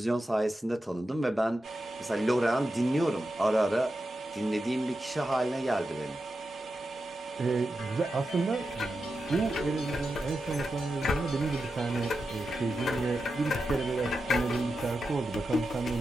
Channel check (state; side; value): normal; both; correlation 0.89